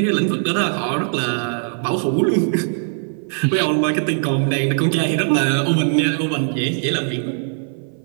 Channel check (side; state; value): left; silent; 58 dB below the other